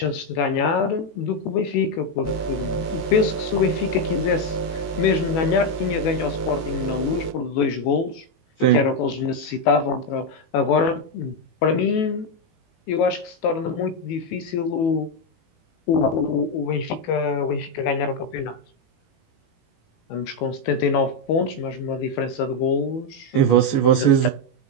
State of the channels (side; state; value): right; late; 18 ms